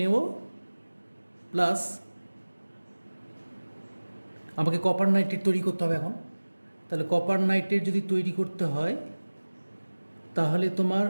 প্লাস আমাকে কপার নাইট্রেট তৈরি করতে হবে এখন। তাহলে কপার নাইট্রেট যদি তৈরি করতে হয় তাহলে তোমার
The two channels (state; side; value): inverted; both; correlation -1.00